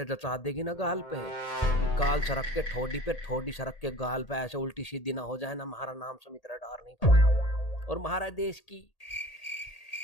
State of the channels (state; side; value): late; right; 1.8 ms